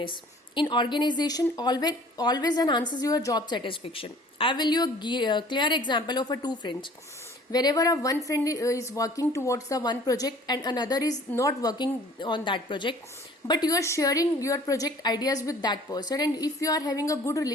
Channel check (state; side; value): normal; both; correlation 0.51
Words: in organization, always enhances your job satisfaction. I will give you a clear example of two friends. Whenever one friend is working towards the one project and another is not working on that project, but you are sharing your project ideas with that person, and if you are having a good